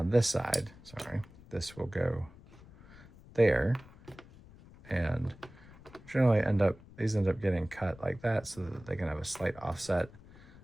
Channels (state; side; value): noise; left; rumble, 21 dB below the sound